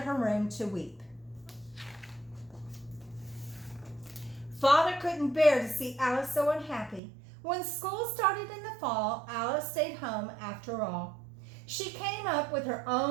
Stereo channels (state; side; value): drops out; left; at 7.0 s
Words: her room to weep. Father couldn't bear to see Alice so unhappy. When school started in the fall, Alice stayed home after all. She came up with her